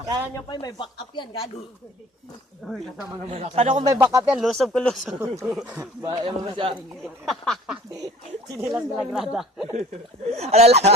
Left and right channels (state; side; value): normal; both; correlation 0.49